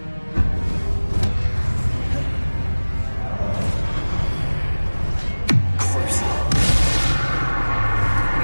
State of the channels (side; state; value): both; inverted; correlation -1.00